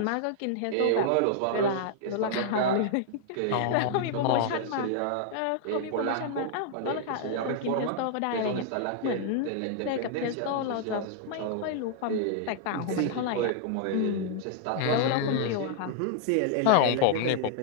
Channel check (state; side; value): different; both; correlation -0.01